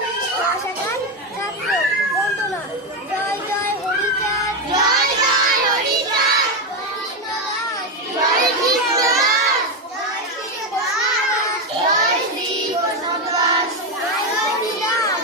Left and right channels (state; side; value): normal; both; correlation 0.10